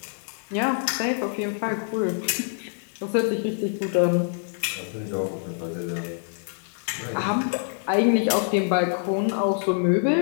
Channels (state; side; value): silent; right; digital silence